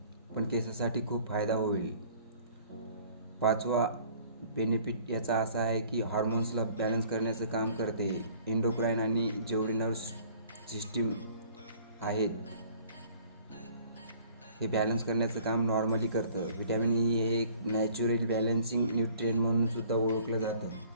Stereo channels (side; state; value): both; inverted; correlation -0.53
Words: पण केसासाठी खूप फायदा होईल. पाचवा बेनिफिट याचा असा आहे की हॉर्मोन्सला बॅलन्स करण्याचं काम करते. एंडोक्राईन आणि जेवढे नर्व्स सिस्टीम आहेत हे बॅलन्स करण्याचं काम नॉर्मली करतं. व्हिटॅमिन ई हे एक नॅचरल बॅलन्सिंग न्यूट्रिएंट म्हणून सुद्धा ओळखलं जातं.